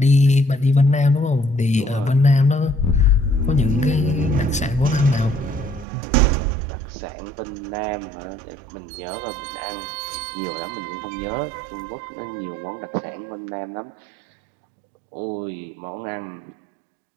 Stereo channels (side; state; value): left; drops out; at 5.9 s